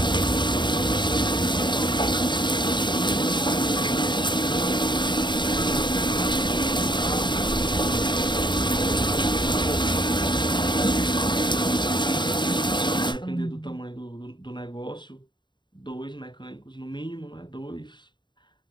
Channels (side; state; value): right; late; 0.22 ms